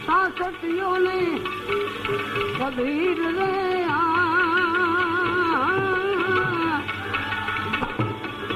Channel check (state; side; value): identical; both; correlation 1.00